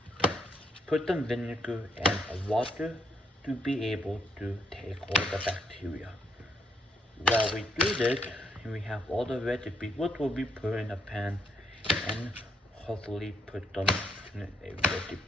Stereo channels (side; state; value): both; normal; correlation 0.74